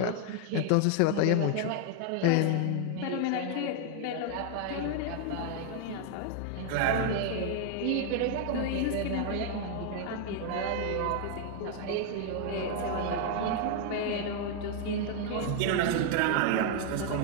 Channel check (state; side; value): different; both; correlation 0.00